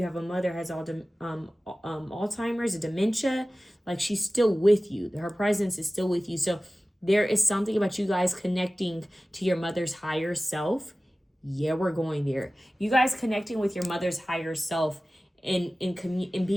have a mother has Alzheimer's, a dementia, like she's still with you. Her presence is still with you. So there is something about you guys connecting to your mother's higher self. Yeah, we're going there. You guys connecting with your mother's higher self in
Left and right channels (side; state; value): both; normal; correlation 0.97